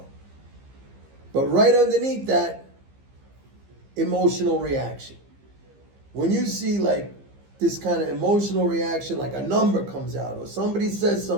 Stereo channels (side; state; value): left; late; 15 ms